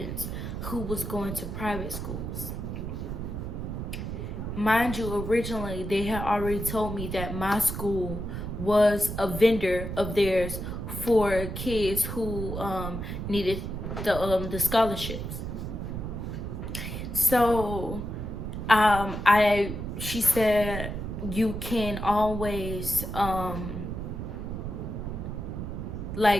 who was going to private schools. Mind you, originally they had already told me that my school was a vendor of theirs for kids who needed the scholarships. So she said you can always redo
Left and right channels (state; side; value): noise; right; rumble, 5 dB below the sound